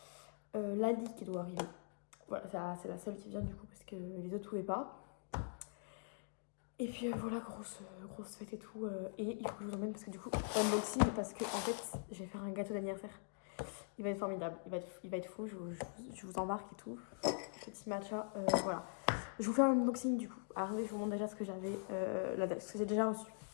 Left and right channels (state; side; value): silent; right; digital silence